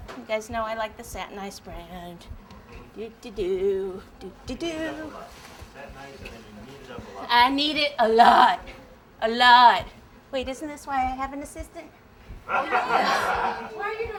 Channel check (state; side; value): identical; both; correlation 1.00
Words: You guys know I like the satinized brand. Do-do-do, do-do-do. I need it a lot. A lot. Wait, isn't this why I have an assistant? Why are you